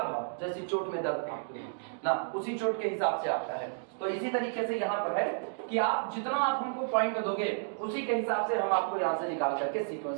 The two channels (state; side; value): silent; left; digital silence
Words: भाव जैसी चोट में दर्द आपके ना, उसी चोट के हिसाब से आता है। तो इसी तरीके से यहाँ पर है कि आप जितना आप हमको पॉइंट दोगे, उसी के हिसाब से हम आपको यहाँ से निकाल करके